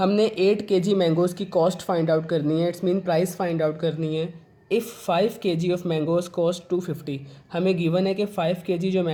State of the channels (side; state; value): both; identical; correlation 1.00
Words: 8 kg मैंगोज़ की कॉस्ट फाइंड आउट करनी है, it's mean price find out करनी है। If 5 kg of mangoes cost 250, हमें गिवन है कि 5 kg जो